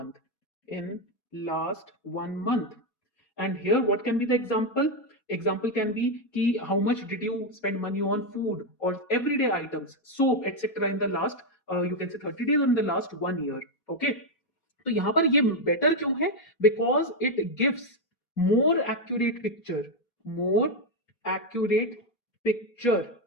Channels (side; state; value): right; late; 4.2 ms